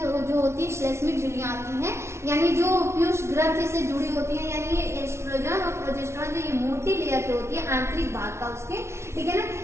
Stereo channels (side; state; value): left; late; 0.13 ms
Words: होती है श्लेष्मिक झिल्लियां आती हैं, यानी जो पीयूष ग्रंथि से जुड़ी होती है, यानी ये एस्ट्रोजन और प्रोजेस्टेरॉन जो ये मोटी लेयर की होती है आंतरिक भाग का उसके, ठीक है ना,